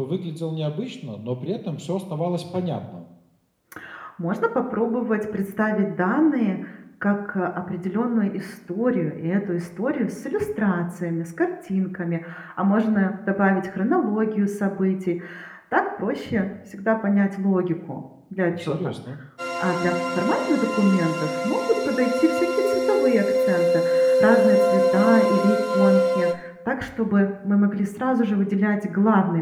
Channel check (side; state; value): both; identical; correlation 1.00